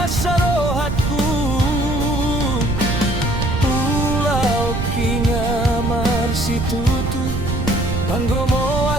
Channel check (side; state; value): right; noise; rumble, 3 dB below the sound